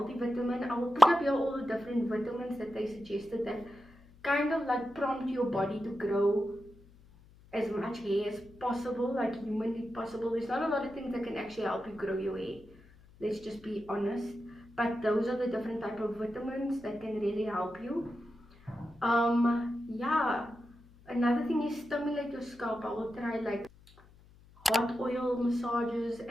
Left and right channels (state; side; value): noise; left; hum, 25 dB below the sound